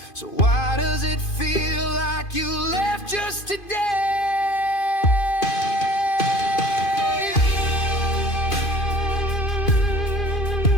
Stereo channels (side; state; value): right; late; 2.5 ms